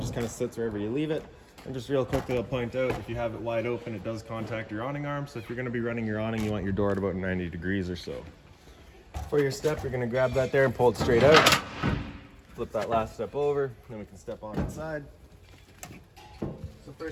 just kind of sits wherever you leave it. And just real quickly, I'll point out, if you have it wide open, it does contact your awning arm. So if you're gonna be running your awning, you want your door at about 90 degrees or so. For your step, you're gonna grab that there and pull it straight out. Flip that last step over, then we can step on inside. So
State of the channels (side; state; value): both; identical; correlation 1.00